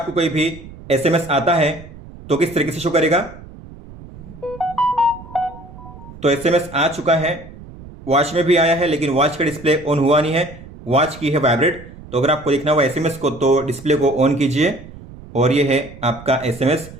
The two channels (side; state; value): right; noise; rumble, 17 dB below the sound